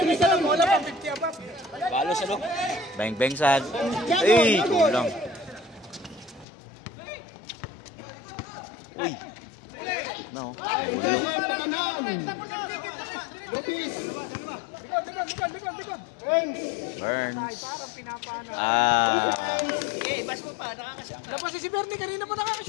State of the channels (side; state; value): right; drops out; at 6.5 s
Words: sa lang. Wala pa, 50 above. Balo sa loob. Bang bang sad. Ay, kulang. Uy. No. Lupis. likod. Burns. Parang pinapana. Labas si Bernie, kanina pa